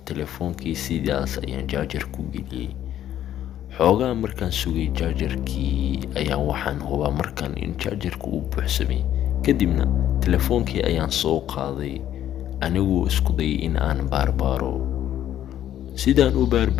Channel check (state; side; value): quieter; right; 11.5 dB